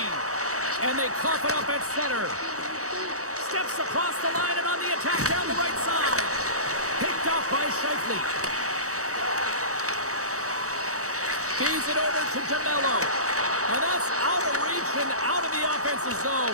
And they cough it up at center. Steps across the line and on the attack down the right side. Picked off by Scheifele. Feeds it over to DeMello. And that's out of reach and out of the offensive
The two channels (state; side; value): late; left; 0.65 ms